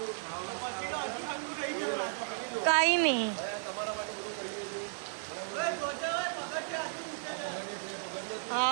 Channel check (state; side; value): silent; left; digital silence